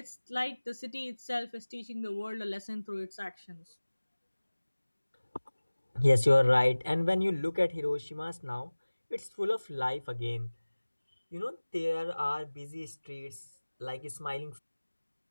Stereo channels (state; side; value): inverted; both; correlation -1.00